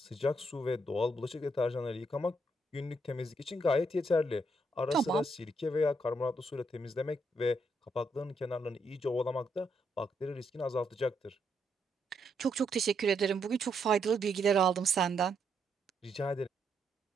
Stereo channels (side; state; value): both; normal; correlation 0.76